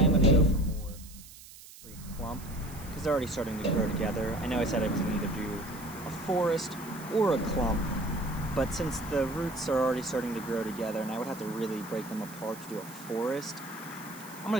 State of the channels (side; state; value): right; noise; hiss, 18 dB below the sound